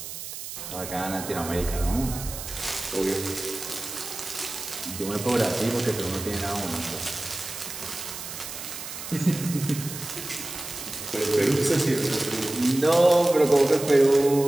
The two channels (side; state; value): right; noise; hiss, 9 dB below the sound